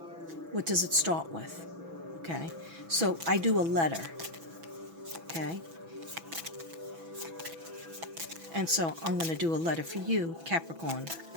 What does it start with? Okay, so I do a letter. Okay, and so I'm going to do a letter for you, Capricorn.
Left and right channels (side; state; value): left; late; 6.1 ms